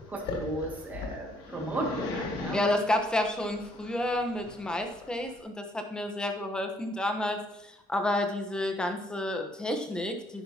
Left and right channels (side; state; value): both; normal; correlation 0.67